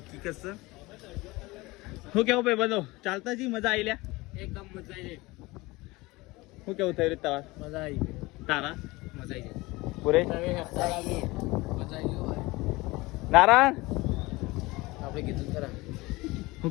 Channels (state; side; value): quieter; right; 21.8 dB